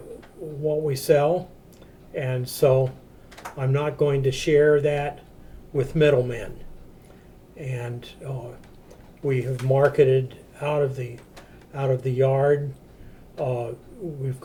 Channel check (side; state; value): both; identical; correlation 1.00